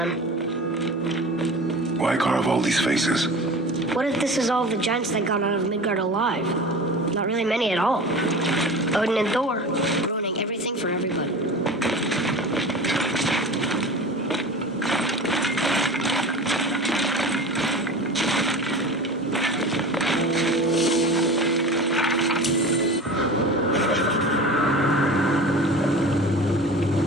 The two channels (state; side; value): normal; both; correlation 0.35